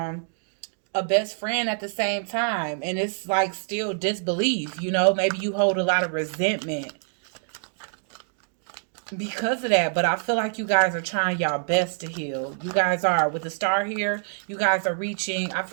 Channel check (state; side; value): silent; left; 61 dB below the other